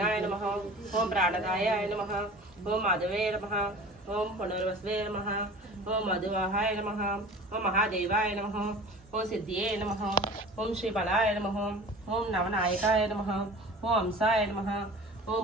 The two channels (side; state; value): both; normal; correlation 0.40